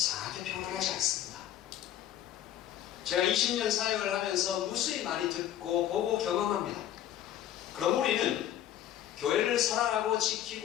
평안하지 않습니다. 제가 20년 사역을 하면서 무수히 많이 듣고 보고 경험합니다. 그럼 우리는 교회를 사랑하고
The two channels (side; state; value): right; quieter; 11.6 dB